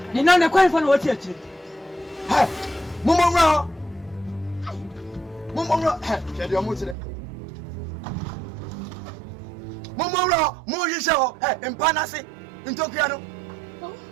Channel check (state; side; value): drops out; left; at 7.0 s